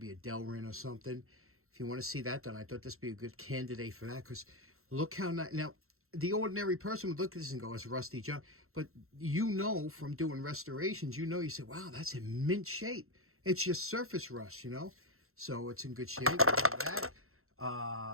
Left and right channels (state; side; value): late; left; 0.62 ms